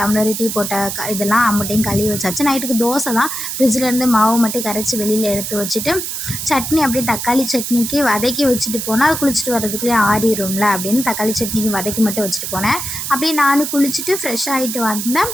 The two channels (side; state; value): right; noise; hiss, 5 dB below the sound